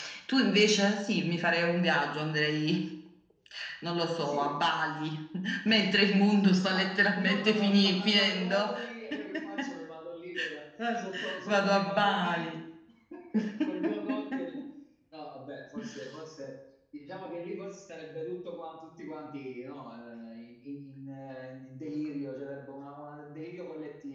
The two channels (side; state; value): both; identical; correlation 1.00